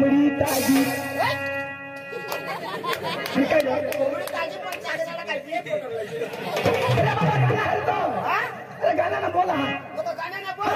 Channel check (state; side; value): identical; both; correlation 1.00